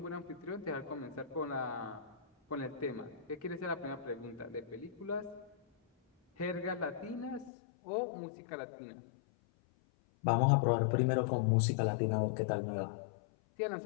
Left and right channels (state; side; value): drops out; right; at 7.5 s